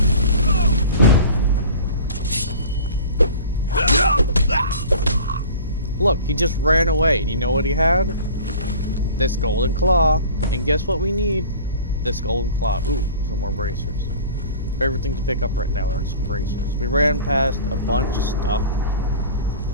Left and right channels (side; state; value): both; inverted; correlation -0.41